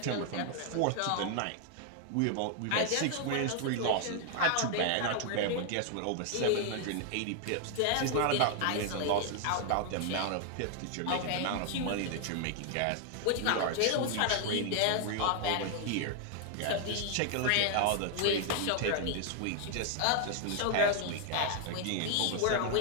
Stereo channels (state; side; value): different; both; correlation 0.00